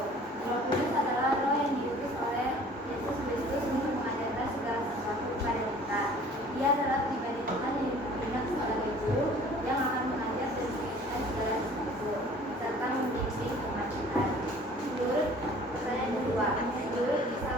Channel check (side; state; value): both; normal; correlation 0.50